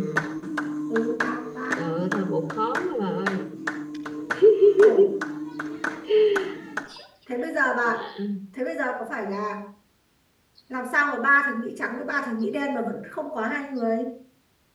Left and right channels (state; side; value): identical; both; correlation 1.00